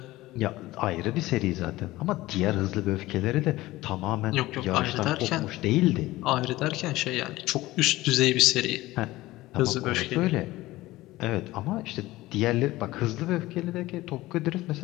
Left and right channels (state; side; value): quieter; right; 17.9 dB